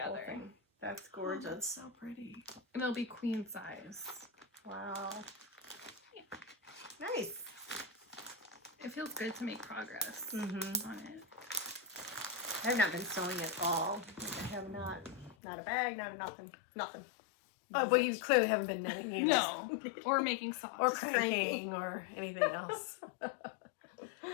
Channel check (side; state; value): right; drops out; at 15.4 s